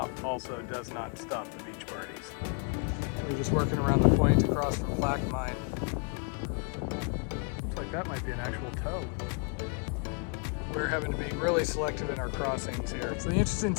also does not stop the beach parties. We're just working around the point across from Plaque Mine. Looks like that might be an actual tow. We're having to be really selective in our crossings here. So the interesting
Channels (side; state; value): right; quieter; 37.9 dB